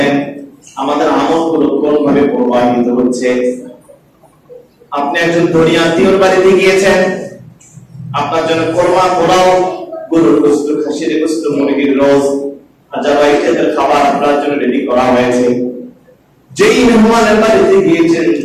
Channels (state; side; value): identical; both; correlation 1.00